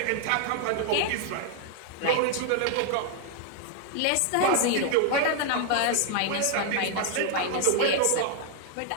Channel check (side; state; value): both; different; correlation 0.00